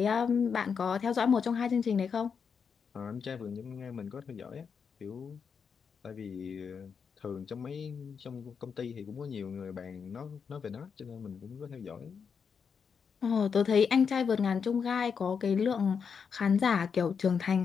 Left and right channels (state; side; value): quieter; right; 6.3 dB